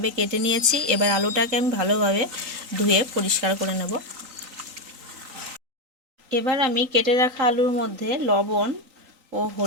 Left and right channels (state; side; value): late; left; 3.9 ms